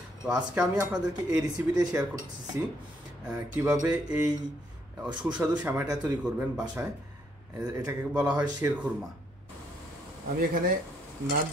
তো আজকে আমি আপনাদেরকে এই রেসিপিটাই শেয়ার করতেছি, কিভাবে এই সুস্বাদু সেমাইটা তৈরি করবেন বাসায়। এটাকে বলা হয় শেরখুরমা। আমি এখানে নাট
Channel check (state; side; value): normal; both; correlation 0.71